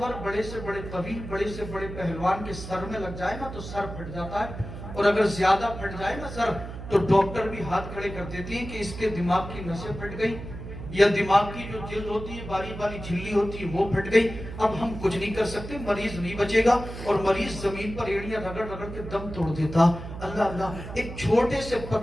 بڑے سے بڑے قوی، بڑے سے بڑے پہلوان کے سر میں لگ جائے نا تو سر پھٹ جاتا ہے، اور اگر زیادہ پھٹ جائے نا سر تو ڈاکٹر بھی ہاتھ کھڑے کر دیتی ہیں کہ اس کے دماغ کی نسیں پھٹ گئی، یا دماغ کی جو جلد ہوتی ہے باری باری جھلی ہوتی ہے وہ پھٹ گئی، اب ہم کچھ نہیں کر سکتے، مریض نہیں بچے گا، اور مریض زمین پر ایڑیاں رگڑ رگڑ کے دم توڑ دیتا۔ اللہ اللہ، ایک چھوٹے سے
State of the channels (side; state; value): right; noise; hum, 10 dB below the sound